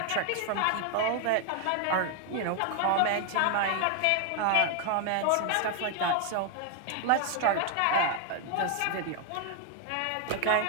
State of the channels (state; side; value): different; both; correlation 0.00